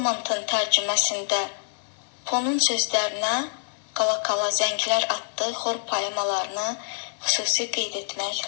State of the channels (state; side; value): silent; right; digital silence